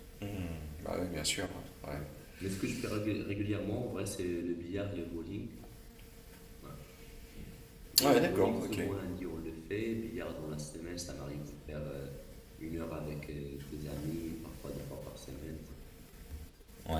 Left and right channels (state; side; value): identical; both; correlation 1.00